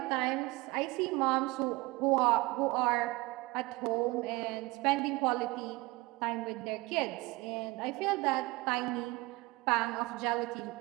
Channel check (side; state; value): left; quieter; 22.3 dB